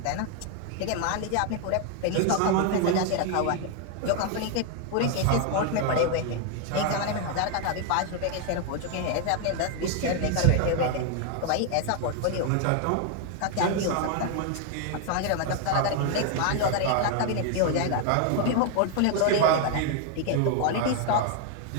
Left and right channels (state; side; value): different; both; correlation 0.00